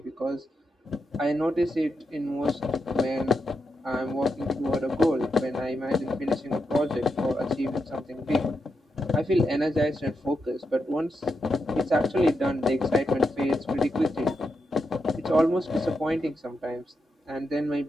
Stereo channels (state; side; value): normal; both; correlation 0.85